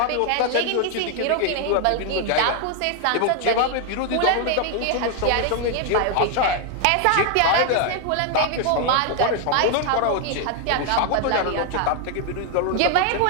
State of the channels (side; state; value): both; different; correlation 0.00